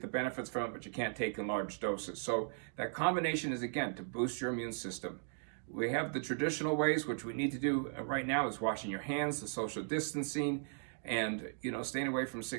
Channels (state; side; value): silent; left; digital silence